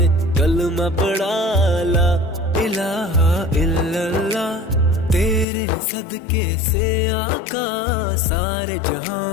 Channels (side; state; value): right; drops out; at 5.5 s